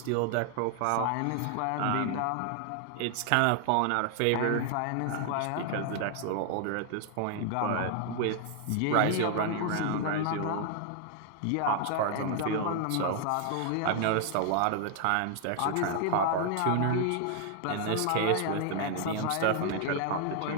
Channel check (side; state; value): both; different; correlation 0.00